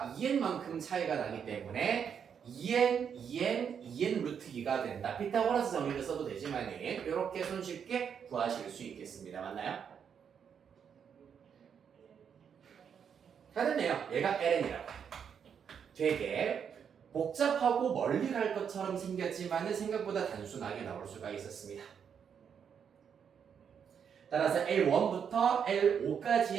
2n만큼 차이가 나기 때문에 2n 루트 2가 된다. 피타고라스 정리를 써도 되지만 이렇게 손쉽게 구하실 수 있겠습니다. 맞나요? 다 됐네요. 얘가 LN이라고 해요. 되게 복잡하고 멀리 갈 것처럼 생겼지만 생각보다 단순하게 나올 수가 있었습니다. 따라서 L1부터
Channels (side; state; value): left; quieter; 7.5 dB